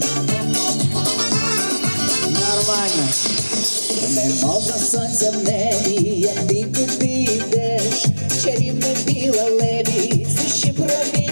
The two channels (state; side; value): inverted; both; correlation -1.00